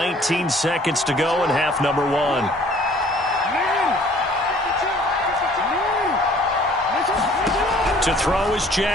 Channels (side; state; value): both; normal; correlation 0.55